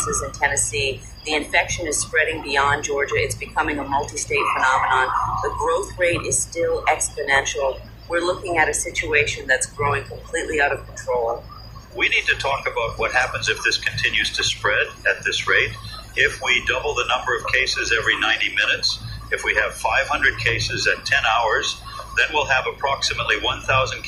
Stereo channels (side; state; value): both; identical; correlation 1.00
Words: in Tennessee. The infection is spreading beyond Georgia. It's becoming a multi-state phenomenon. The growth rate is still exponential. We're looking at a situation that's growing completely out of control. We need to talk about what happens if this continues to spread at this rate. If we double the number of cases every 90 minutes, if we have 500 cases at 10 hours, then we'll have approximately 1,000